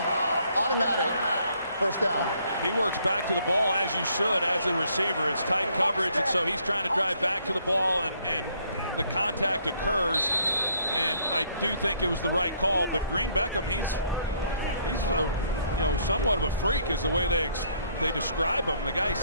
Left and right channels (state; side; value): inverted; both; correlation -0.67